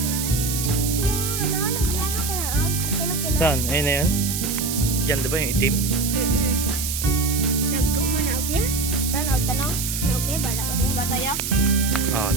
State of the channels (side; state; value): right; noise; hiss, 3 dB below the sound